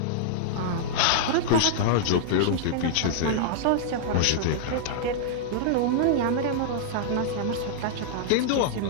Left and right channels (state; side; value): different; both; correlation -0.01